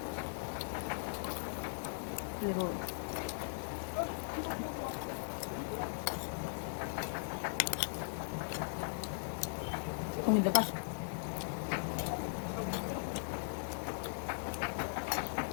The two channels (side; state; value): right; silent; digital silence